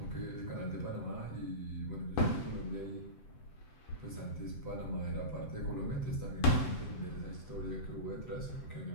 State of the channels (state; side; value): late; right; 7.8 ms